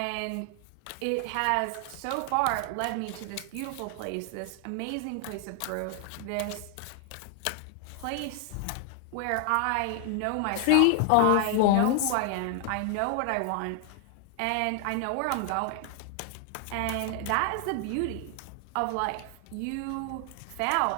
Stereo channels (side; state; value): both; different; correlation 0.00